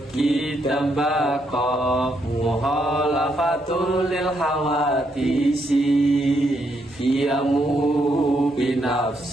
kita bako muhalafatul lil hawadisi Iyamu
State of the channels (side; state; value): both; normal; correlation 0.77